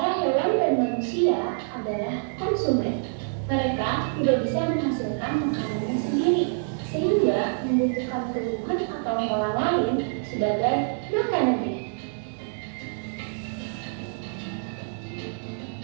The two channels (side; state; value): left; silent; digital silence